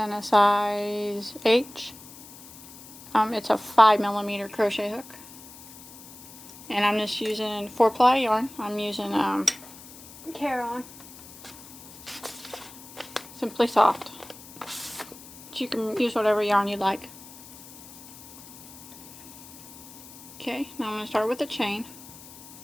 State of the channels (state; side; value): noise; left; hiss, 17 dB below the sound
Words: a size H. It's a 5mm crochet hook. And I'm just using 4-ply yarn. I'm using Caron. Simply Soft. But you can use whatever yarn you like. Okay, now I'm going to start with a chain.